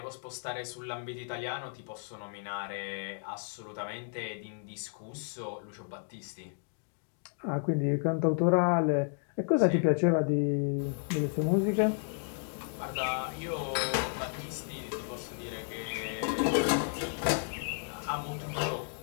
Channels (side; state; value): right; silent; 56 dB below the other